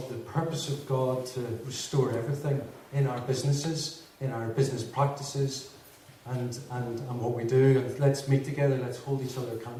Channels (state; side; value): identical; both; correlation 1.00